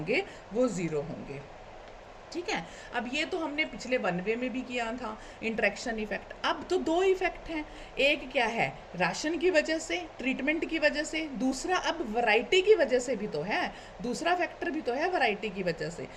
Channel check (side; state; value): both; identical; correlation 1.00